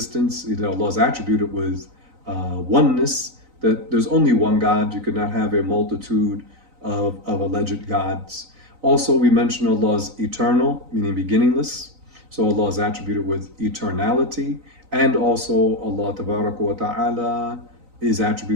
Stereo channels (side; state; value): left; late; 3.9 ms